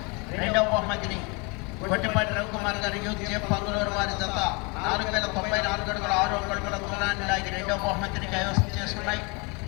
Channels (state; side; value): quieter; right; 30.2 dB